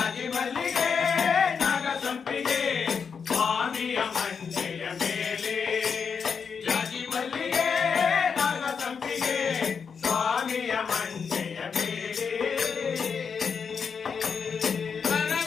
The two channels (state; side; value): quieter; right; 6.1 dB